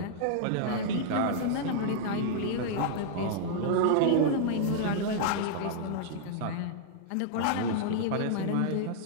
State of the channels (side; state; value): both; different; correlation -0.01